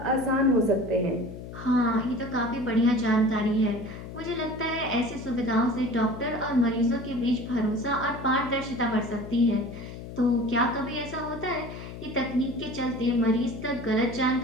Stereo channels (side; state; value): left; noise; hum, 11 dB below the sound